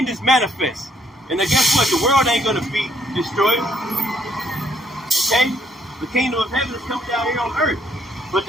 is manifest. And then guess what? The world ain't going to be destroyed. Okay? The kingdom of heaven is coming down here on earth. But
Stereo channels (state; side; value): normal; both; correlation 0.69